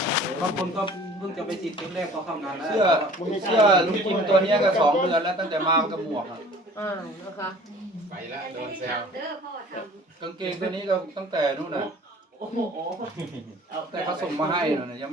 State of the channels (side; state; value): both; normal; correlation 0.49